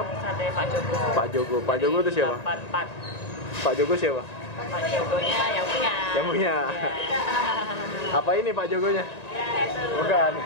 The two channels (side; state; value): right; late; 1.9 ms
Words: Sate Pak Jogo. Pak Jogo. Pak Jogo itu siapa? 84. Pak Jogo siapa? Pak Jogonya yang punya. Yang punya. Ya. Apa ini Pak Jogonya? Ya, itu. Bukan.